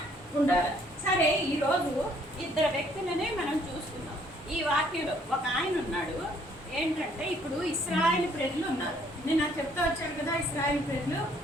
ఉండాలి. సరే, ఈరోజు 2 వ్యక్తులనే మనం చూస్తున్నాం ఈ వాక్యంలో. ఒక ఆయన ఉన్నాడు, ఏంటంటే ఇప్పుడు ఇశ్రాయేలు ప్రజలు ఉన్నారు. నేను నాకు చెప్తా వచ్చాను కదా, ఇశ్రాయేలు ప్రజలు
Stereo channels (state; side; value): normal; both; correlation 0.64